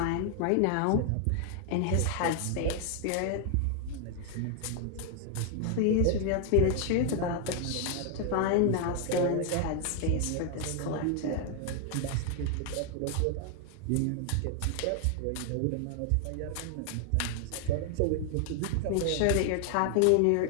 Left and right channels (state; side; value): different; both; correlation 0.00